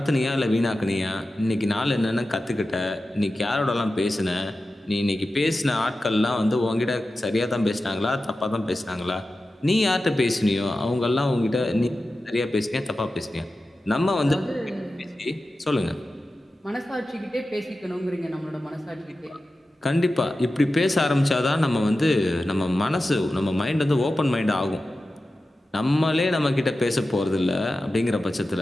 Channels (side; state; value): both; normal; correlation 0.93